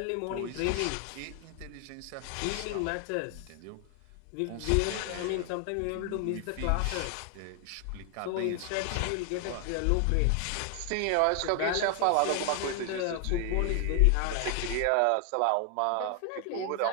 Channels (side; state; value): both; different; correlation 0.00